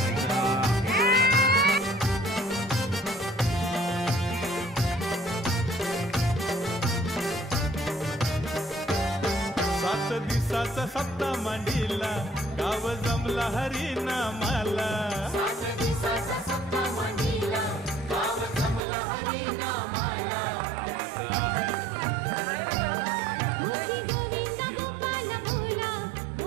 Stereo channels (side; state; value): left; drops out; at 18.8 s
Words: सात दिवसाचा सप्ता मांडीला गाव जमला हरिनामाला 7 दिवसाचा सप्ता मांडीला गाव जमला हरिनामाला मुखी गोविंद गोपाल भोला